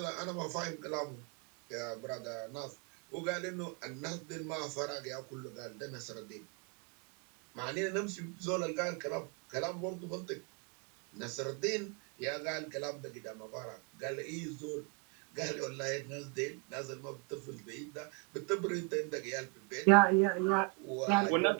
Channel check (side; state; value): left; quieter; 31.8 dB